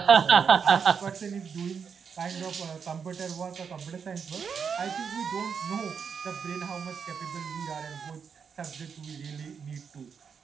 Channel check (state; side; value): quieter; left; 6.5 dB